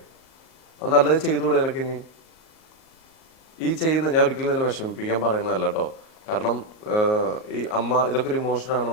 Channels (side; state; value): right; late; 38 ms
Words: അത് നല്ലത് ചെയ്തുകൂടെ നിനക്ക്? ഇനി ഈ ചെയ്യുന്ന ഞാൻ ഒരിക്കലും നിന്നെ വിഷമിപ്പിക്കാൻ പറയുന്നതല്ല കേട്ടോ. കാരണം ഈ അമ്മ ഇതൊക്കെ ഒരു ഇമോഷനാണ്